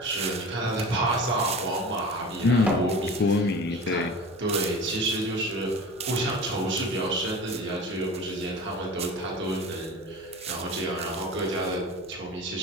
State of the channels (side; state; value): right; noise; hum, 28 dB below the sound